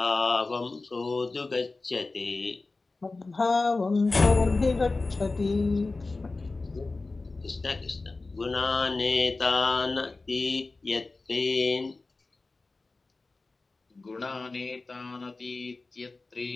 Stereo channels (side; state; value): right; quieter; 3.5 dB